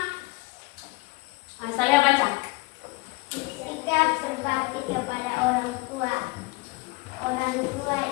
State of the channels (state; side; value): quieter; right; 23.7 dB